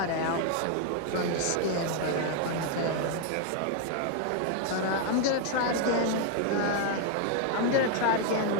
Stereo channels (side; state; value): both; different; correlation 0.00